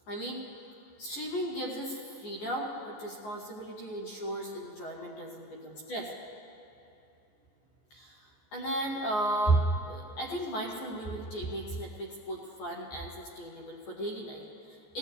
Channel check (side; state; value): right; late; 14 ms